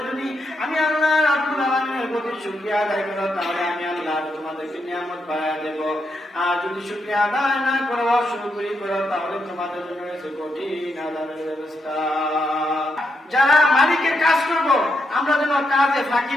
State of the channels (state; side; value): normal; both; correlation 0.82